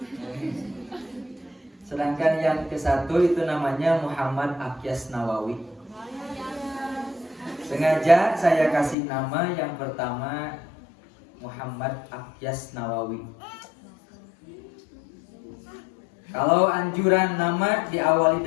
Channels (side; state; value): right; drops out; at 9.0 s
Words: Sedangkan yang ke-1 itu namanya Muhammad Akyas Nawawi. Sengaja saya kasih nama yang pertama Muhammad Akyas Nawawi. Kalau anjuran nama diawali